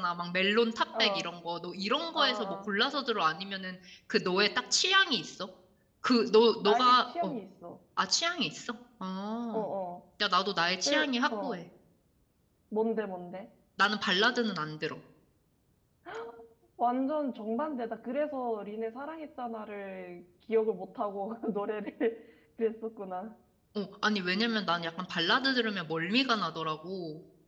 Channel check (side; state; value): both; identical; correlation 1.00